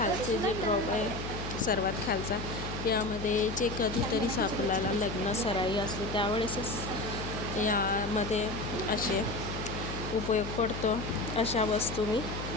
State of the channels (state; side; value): noise; left; hum, 7 dB below the sound